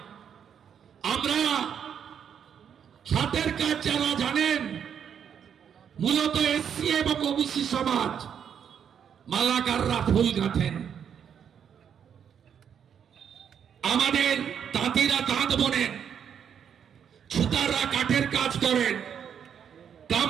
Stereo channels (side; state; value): left; quieter; 8.1 dB